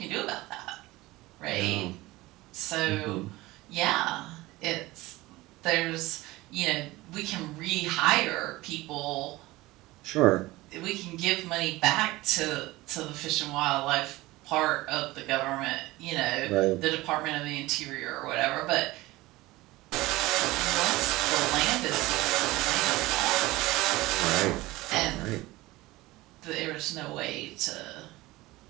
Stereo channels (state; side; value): quieter; left; 19.4 dB